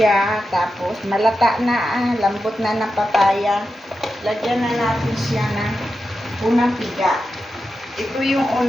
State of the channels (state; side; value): normal; both; correlation 0.90